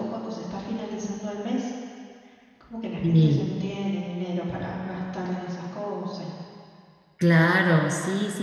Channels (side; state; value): both; identical; correlation 1.00